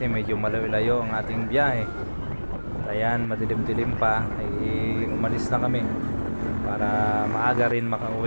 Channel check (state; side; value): inverted; both; correlation -1.00